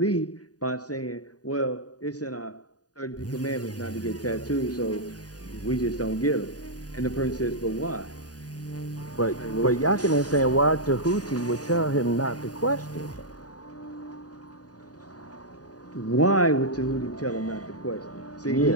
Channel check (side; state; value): right; late; 0.68 ms